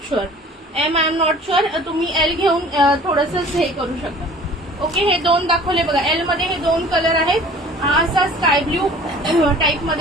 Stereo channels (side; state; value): both; normal; correlation 0.47